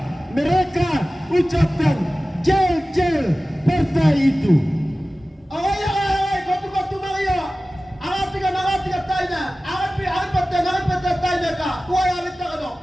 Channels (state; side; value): normal; both; correlation 0.96